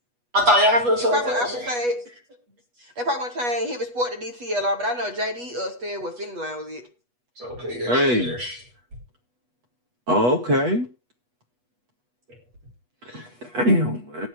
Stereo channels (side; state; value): left; late; 8.2 ms